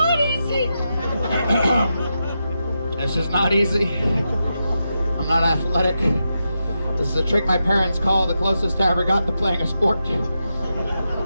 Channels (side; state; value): both; inverted; correlation -0.87